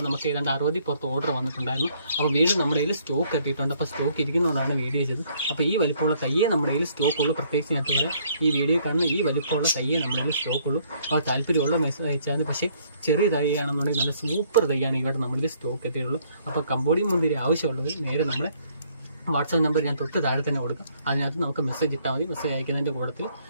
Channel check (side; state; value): both; inverted; correlation -0.65